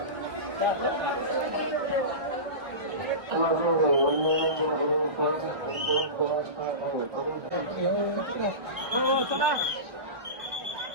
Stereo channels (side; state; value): left; late; 1.8 ms